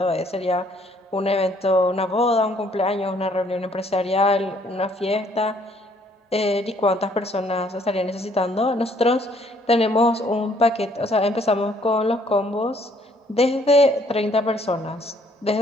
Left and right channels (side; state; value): both; normal; correlation 0.64